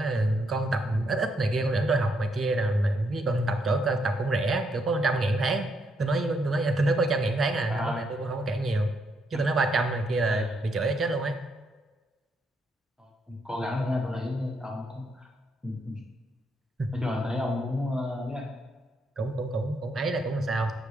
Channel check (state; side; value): normal; both; correlation 0.76